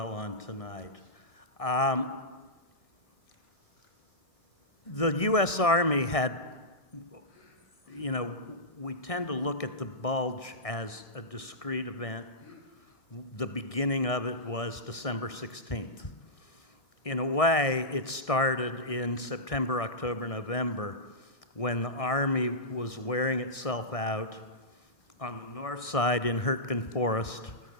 on tonight. The U.S. Army had, we tend to look at the Bulge as a discrete event. The beginning of it was December 16th. In a way, it started in September, October, November, when the Army was wearing itself out on the north side in Hurtgen Forest,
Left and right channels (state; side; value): late; right; 1.6 ms